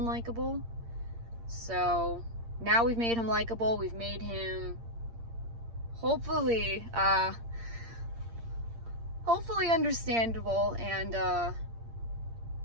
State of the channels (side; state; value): left; late; 8.7 ms